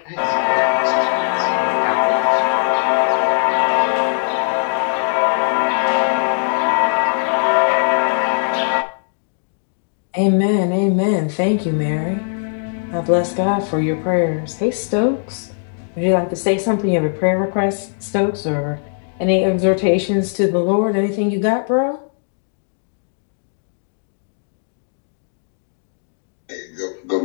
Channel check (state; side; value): silent; right; digital silence